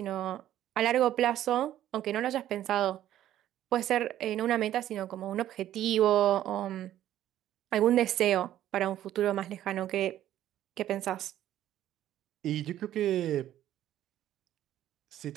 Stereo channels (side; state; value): left; quieter; 12.4 dB